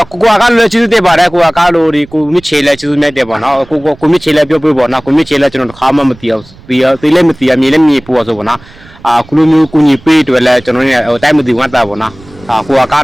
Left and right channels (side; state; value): right; noise; rumble, 23 dB below the sound